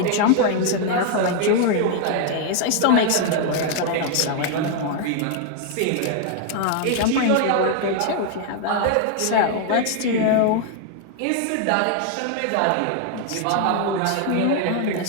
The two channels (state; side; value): different; both; correlation 0.00